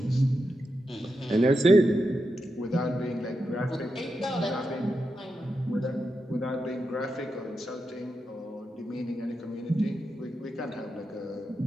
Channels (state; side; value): normal; both; correlation 0.87